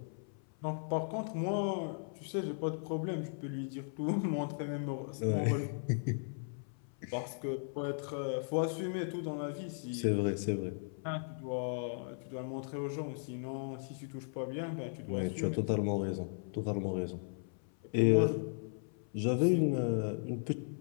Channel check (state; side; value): silent; right; 53 dB below the other